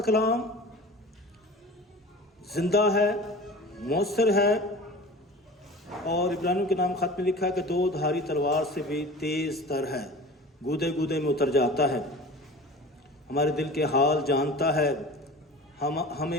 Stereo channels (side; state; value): both; normal; correlation 0.38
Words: کلام زندہ ہے، مؤثر ہے، اور ابراہیم کے نام خط میں لکھا ہے کہ دو دھاری تلوار سے بھی تیز تر ہے، گودے گودے میں اتر جاتا ہے، ہمارے دل کے حال جانتا ہے،